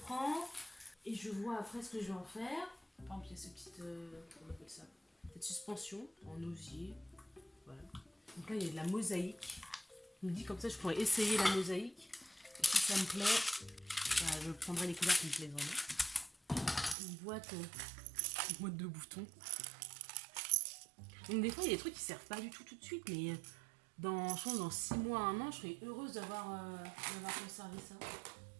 et je vois après ce que je vais en faire. Par exemple, il y a ce petit, comment on appelle ça, cette suspension en osier. Voilà. Donc là il y a de la mosaïque. Je me dis comme ça je pourrais essayer la mosaïque. Et si ça me plaît, je prendrai les couleurs qui me plaisent vraiment. Une boîte de boutons. Donc des fois il y a des trucs qui servent pas du tout de suite, mais je pense dans 6 mois, 1 an, je serais heureuse d'avoir conservé ça.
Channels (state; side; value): drops out; left; at 16.9 s